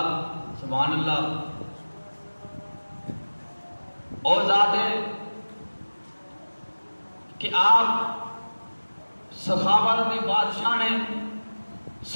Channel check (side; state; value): both; inverted; correlation -1.00